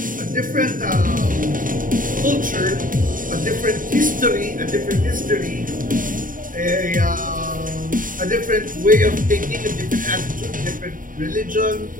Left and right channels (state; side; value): late; left; 0.39 ms